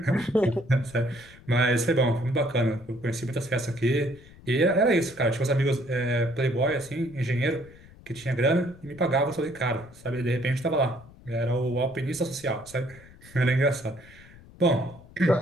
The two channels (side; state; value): left; noise; rumble, 22 dB below the sound